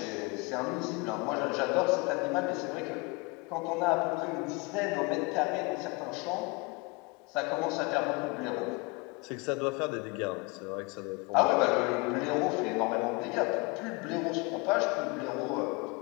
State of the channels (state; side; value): quieter; right; 27.3 dB